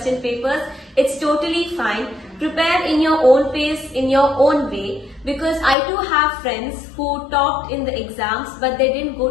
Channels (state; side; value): drops out; right; at 5.8 s